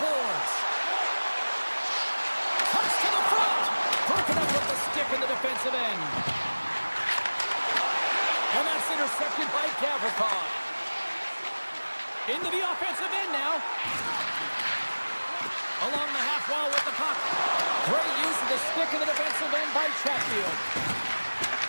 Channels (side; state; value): both; inverted; correlation -1.00